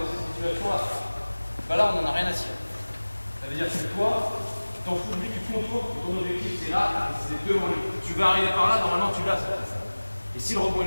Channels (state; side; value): inverted; both; correlation -1.00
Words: cette situation-là. Bah là, on n'en a rien à cirer. Ça veut dire que toi, tu t'en fous de lui, tu contours, ton objectif c'est là, et c'est devant lui. Tu vas arriver par là, normalement tu l'as. Et si le rebond